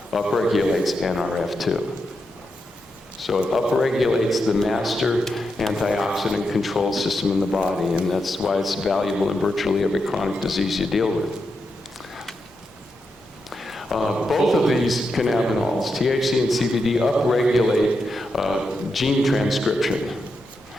upregulates NRF2. So it upregulates the master antioxidant control system in the body, and that's why it's valuable in virtually every chronic disease you deal with. Both of these cannabinols, THC and CBD, upregulate gene transcription,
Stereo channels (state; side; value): normal; both; correlation 0.85